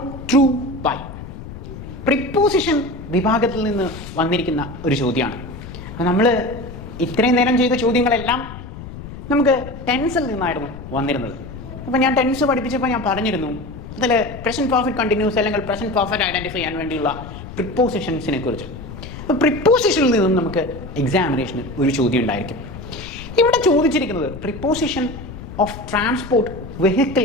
through by. Preposition വിഭാഗത്തിൽ നിന്ന് വന്നിരിക്കുന്ന ഒരു ചോദ്യമാണ്. അപ്പോൾ നമ്മൾ ഇത്രയും നേരം ചെയ്ത ചോദ്യങ്ങളെല്ലാം നമുക്ക് ടെൻസിൽ നിന്നായിരുന്നു വന്നിരുന്നത്. അപ്പോൾ ഞാൻ ടെൻസ് പഠിപ്പിച്ചപ്പോൾ ഞാൻ പറഞ്ഞിരുന്നു അതിൽ പ്രസൻറ്റ് പെർഫെക്റ്റ് കണ്ടിന്യൂസ് അല്ലെങ്കിൽ പ്രസൻറ്റ് പെർഫെക്റ്റ് ഐഡൻറ്റിഫൈ ചെയ്യാൻ വേണ്ടിയുള്ള പ്രിപ്പോസിഷൻസിനെ കുറിച്ച്. അപ്പോൾ പ്രിപ്പോസിഷനിൽ നിന്നും നമുക്ക് എക്സാമിനേഷന് ഒരു ചോദ്യം ഉണ്ടായിരിക്കും. ഇവിടെ ചോദിച്ചിരിക്കുന്നത് പ്രിപ്പോസിഷൻ ഓഫ് ട്രാൻസ്പോർട്ട്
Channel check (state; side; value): noise; left; rumble, 12 dB below the sound